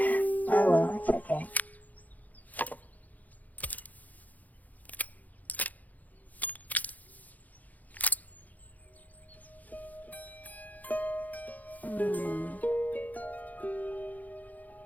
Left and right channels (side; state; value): right; late; 0.079 ms